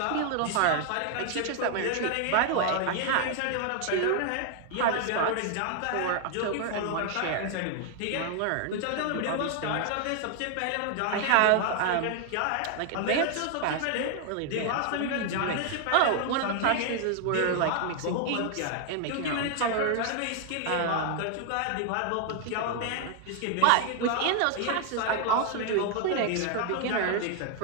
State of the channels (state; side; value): different; both; correlation 0.00